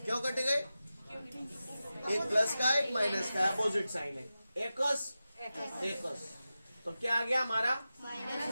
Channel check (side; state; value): both; inverted; correlation -0.93